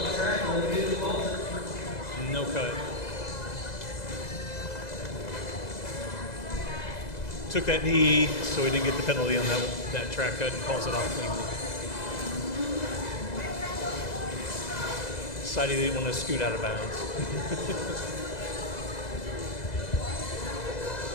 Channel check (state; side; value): late; right; 2.0 ms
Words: No cut. Took that knee, so he didn't get the penalty on that track cut and calls it off cleanly. Decided he didn't want to scoot out of bounds.